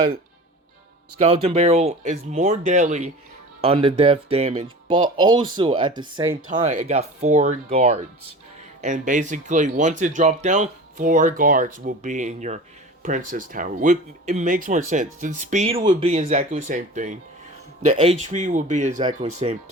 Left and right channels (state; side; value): normal; both; correlation 0.36